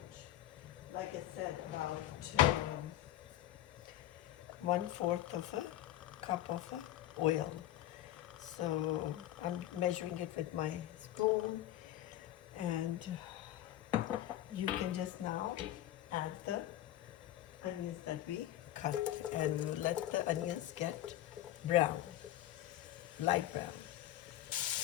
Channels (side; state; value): right; quieter; 13.5 dB